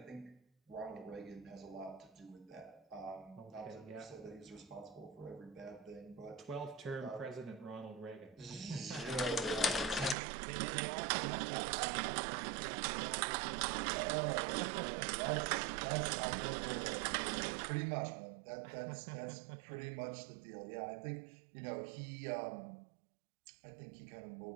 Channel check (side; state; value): left; drops out; at 10.2 s